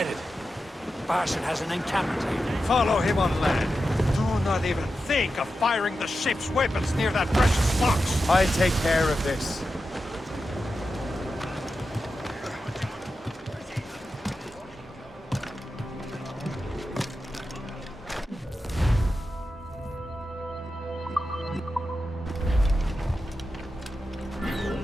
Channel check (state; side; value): normal; both; correlation 0.90